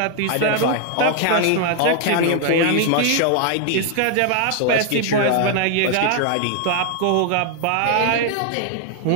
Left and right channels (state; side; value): different; both; correlation 0.00